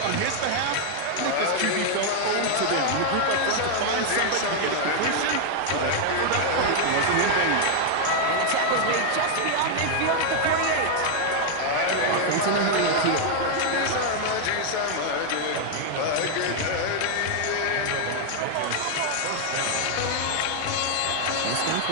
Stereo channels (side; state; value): both; different; correlation 0.00